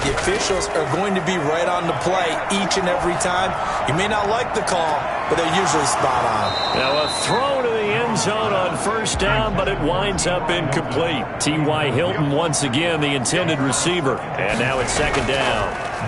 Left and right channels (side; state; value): both; identical; correlation 1.00